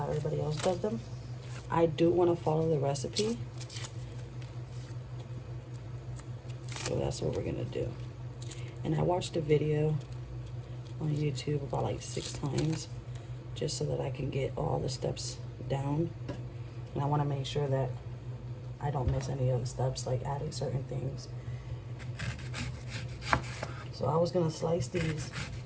everybody else does them. I do want to follow the recipe. So that's what we're gonna do. And I watched a video on YouTube about like 6 times just so that I can get all the steps down. And I want to make sure that I don't miss any of the steps, like adding certain things. So I was gonna slice these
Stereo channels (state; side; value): identical; both; correlation 1.00